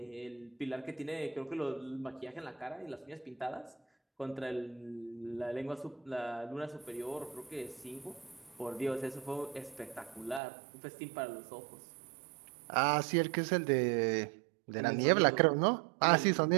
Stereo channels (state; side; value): drops out; left; at 10.4 s